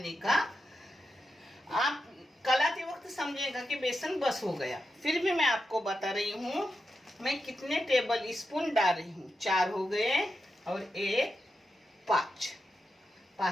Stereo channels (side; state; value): both; normal; correlation 0.88